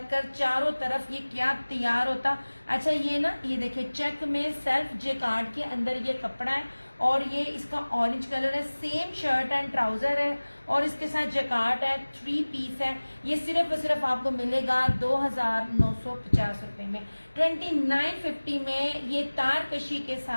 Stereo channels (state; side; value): inverted; both; correlation -1.00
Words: चारों तरफ ये क्या तैयार होता। अच्छा ये ना, ये देखिए चेक में सेल्फ जेकार्ड के अंदर ये कपड़ा है और ये इसका ऑरेंज कलर है। सेम शर्ट एंड ट्राउजर है और इसके साथ जकार्ड है, 3 पीस है। ये सिर्फ और सिर्फ आपको मिलेगा 2950 रुपए में, 2950 में। ये तारकशी के